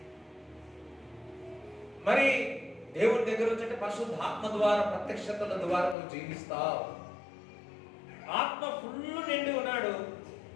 మరి దేవుడి దగ్గర వచ్చే పరిశుద్ధాత్మ ద్వారా, ప్రత్యక్షతల ద్వారా నువ్వు జీవిస్తావు. ఆత్మ ఫుల్ నిండి ఉన్నాడు.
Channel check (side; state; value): right; drops out; at 6.0 s